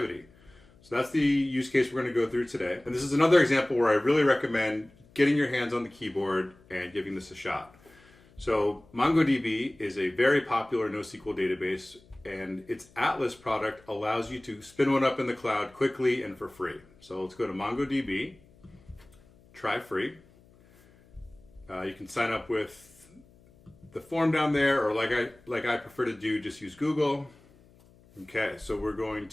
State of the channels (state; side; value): noise; left; hum, 27 dB below the sound